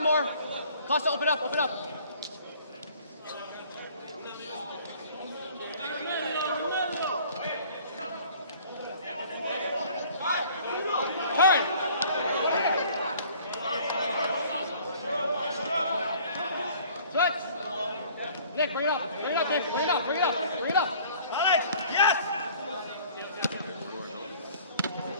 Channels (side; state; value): both; inverted; correlation -0.52